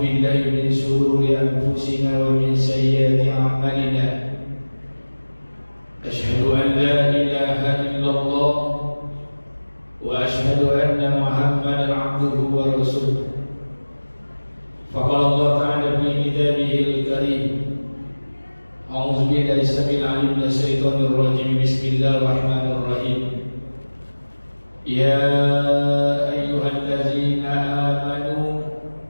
min shururi anfusina wa min sayyiati a'malina. Asyhadu an la ilaha illallah wa asyhadu anna Muhammadan 'abduhu wa rasuluh. Faqala Allah ta'ala fi kitabihil karim. A'udzu billahi samil 'alim minasy syaithanir rajim. Bismillahirrahmanirrahim. Ya ayyuhallazina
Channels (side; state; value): both; inverted; correlation -1.00